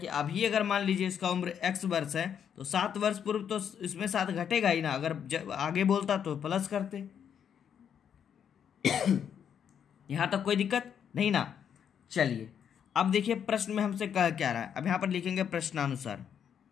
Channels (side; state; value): right; quieter; 8.3 dB